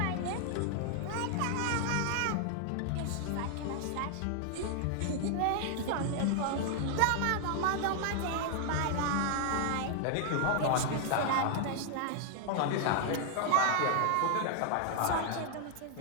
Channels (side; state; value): both; different; correlation 0.00